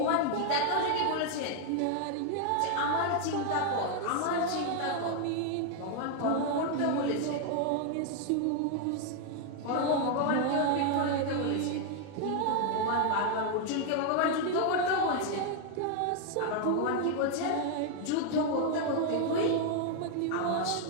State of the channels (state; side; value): different; both; correlation 0.00